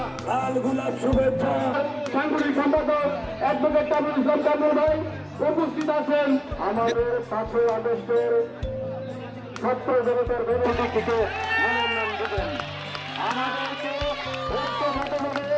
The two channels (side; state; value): both; identical; correlation 1.00